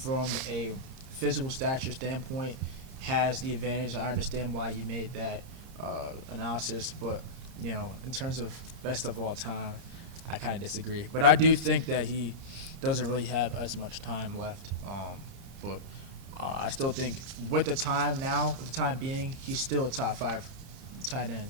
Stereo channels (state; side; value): late; left; 32 ms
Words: a physical stature standpoint has the advantage. I understand why you made that analysis, but in terms of best of all time, I kind of disagree. But I do think that he doesn't really have as much time left. But I still think with the time being, he's still a top 5 tight end